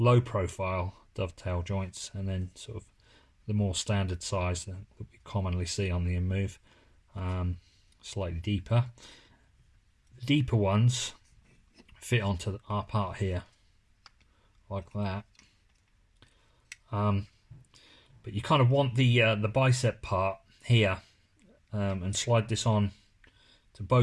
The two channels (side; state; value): both; identical; correlation 1.00